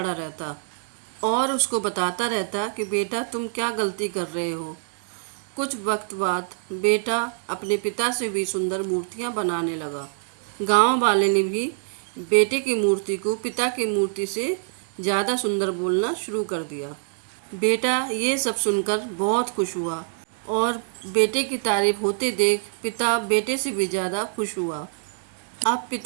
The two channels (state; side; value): silent; left; digital silence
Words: रहता और उसको बताता रहता कि बेटा तुम क्या गलती कर रहे हो। कुछ वक्त बाद बेटा अपने पिता से भी सुंदर मूर्तियां बनाने लगा। गांव वाले ने भी बेटे की मूर्ति को पिता की मूर्ति से ज़्यादा सुंदर बोलना शुरू कर दिया। बेटा ये सब सुनकर बहुत खुश हुआ और बेटे की तारीफ होते देख पिता बेटे से भी ज़्यादा खुश हुआ। अब